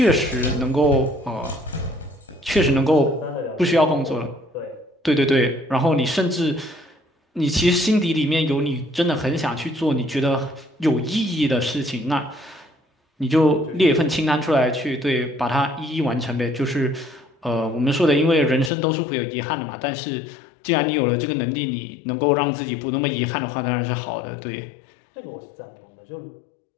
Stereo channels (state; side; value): drops out; right; at 18.7 s